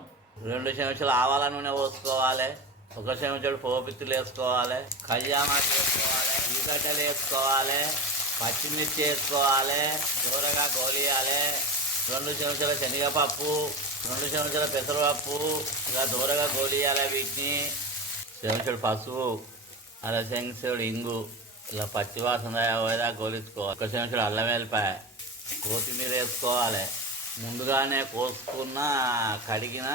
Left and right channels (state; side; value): normal; both; correlation 0.25